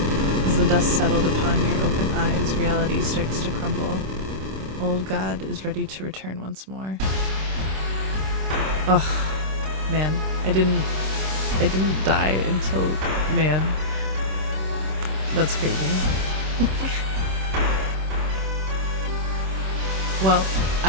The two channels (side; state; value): left; late; 26 ms